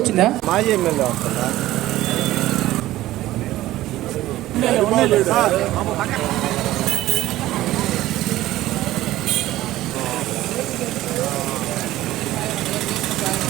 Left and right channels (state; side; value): quieter; left; 15.5 dB